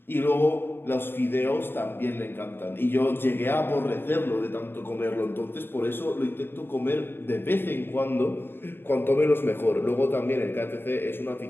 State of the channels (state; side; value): late; right; 0.10 ms